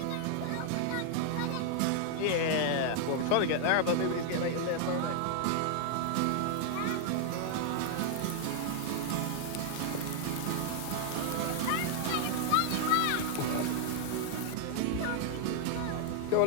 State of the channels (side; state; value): both; different; correlation 0.00